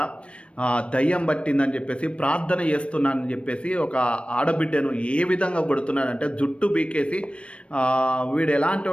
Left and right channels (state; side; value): late; right; 0.060 ms